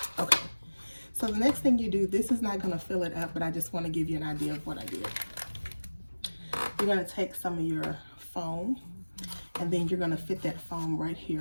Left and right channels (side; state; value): both; inverted; correlation -1.00